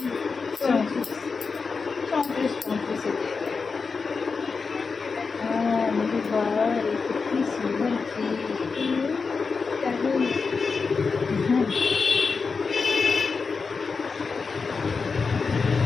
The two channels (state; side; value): quieter; right; 4.8 dB